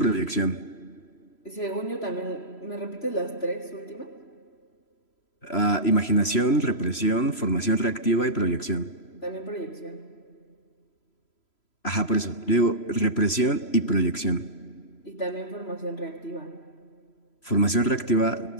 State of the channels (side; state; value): right; late; 3.0 ms